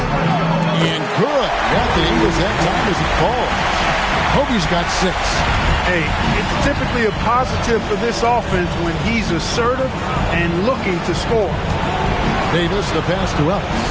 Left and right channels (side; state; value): both; identical; correlation 1.00